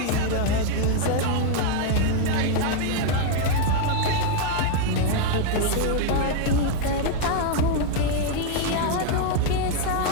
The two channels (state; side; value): different; both; correlation 0.01